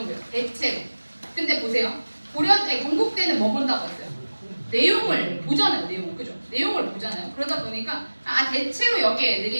대체로. 근데 보세요. 건국대는 뭐 본다고 했어요? 내용을 보잖아요. 내용을. 그죠? 내용을 보잖아요. 그러다 보니까 대체로 여기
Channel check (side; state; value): both; inverted; correlation -1.00